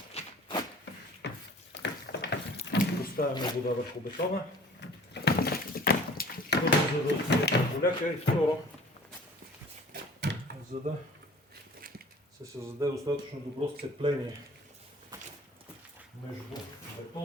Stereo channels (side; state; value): both; normal; correlation 0.48